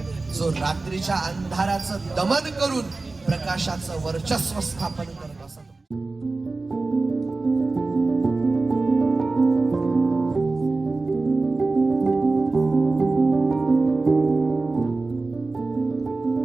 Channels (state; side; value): quieter; left; 3.5 dB